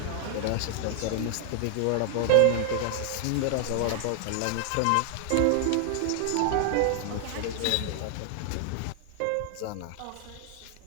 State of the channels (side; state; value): both; different; correlation 0.00